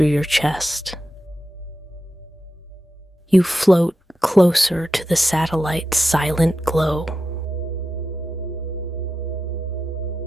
your chest. You float closer to the satellite's silent glow.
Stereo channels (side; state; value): both; normal; correlation 0.90